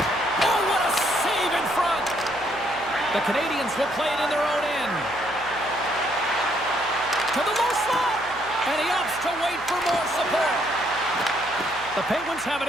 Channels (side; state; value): right; noise; hum, 20 dB below the sound